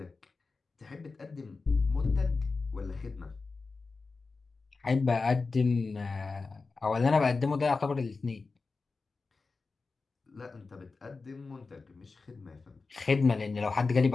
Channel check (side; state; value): right; quieter; 4.1 dB